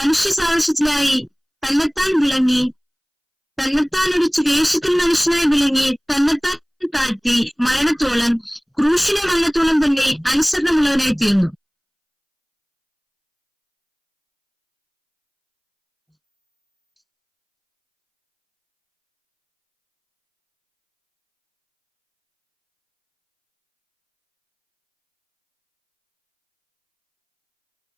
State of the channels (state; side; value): identical; both; correlation 1.00